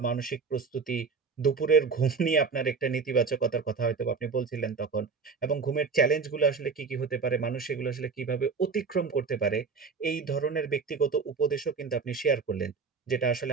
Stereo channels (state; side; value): quieter; left; 5.1 dB